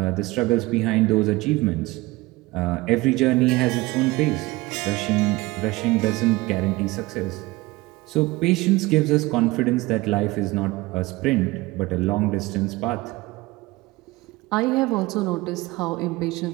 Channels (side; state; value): left; quieter; 20.9 dB